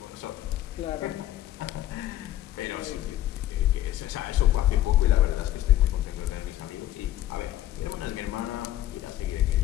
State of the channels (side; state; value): right; quieter; 13.6 dB